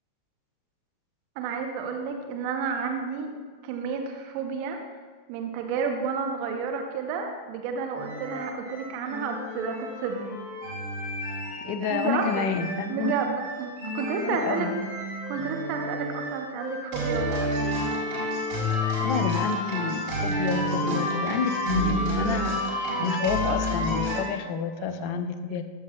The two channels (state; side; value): late; left; 37 ms